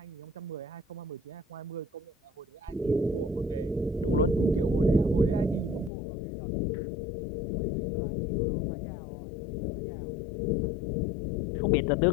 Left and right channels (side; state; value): right; drops out; at 5.9 s